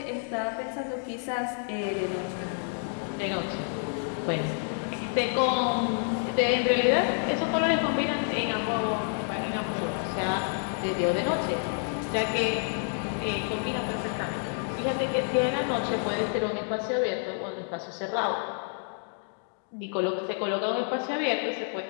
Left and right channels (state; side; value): silent; right; 57 dB below the other